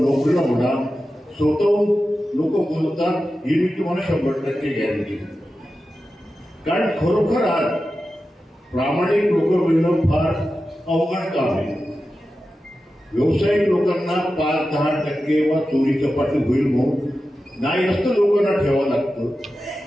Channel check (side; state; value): both; normal; correlation 0.92